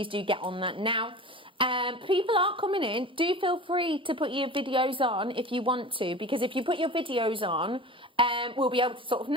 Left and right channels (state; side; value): normal; both; correlation 0.35